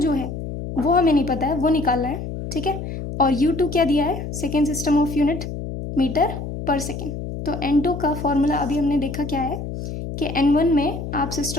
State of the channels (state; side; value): noise; left; hum, 7 dB below the sound